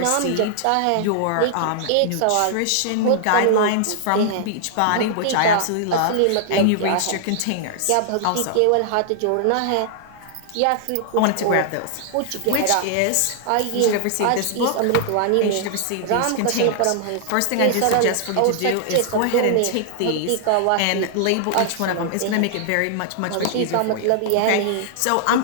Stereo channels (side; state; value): both; different; correlation -0.01